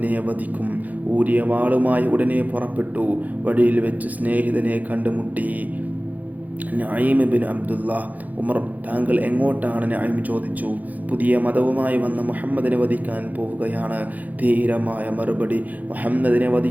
വധിക്കും. ഊരിയ വാളുമായി ഉടനെ പുറപ്പെട്ടു. വഴിയിൽ വെച്ച് സ്നേഹിതനെ കണ്ടുമുട്ടി. നഈം ബിൻ അബ്ദുള്ള. ഉമർ, താങ്കൾ എങ്ങോട്ടാണ്? നഈം ചോദിച്ചു. പുതിയ മതവുമായി വന്ന മുഹമ്മദിനെ വധിക്കാൻ പോവുകയാണ്. ധീരമായ മറുപടി. മുഹമ്മദിനെ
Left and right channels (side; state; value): left; late; 0.080 ms